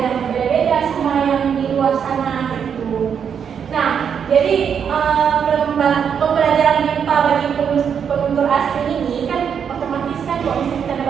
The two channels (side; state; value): left; quieter; 7.5 dB